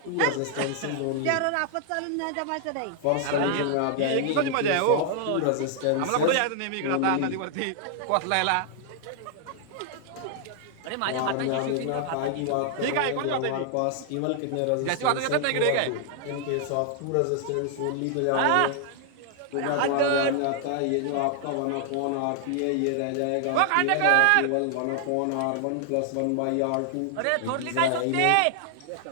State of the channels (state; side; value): different; both; correlation 0.00